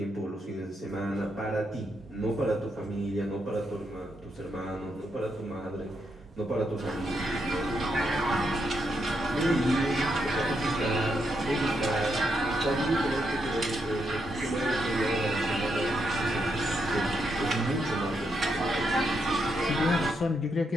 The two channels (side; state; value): both; normal; correlation 0.80